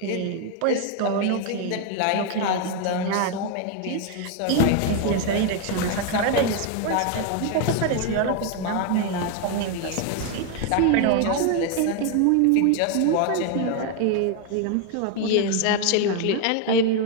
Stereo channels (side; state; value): both; different; correlation 0.01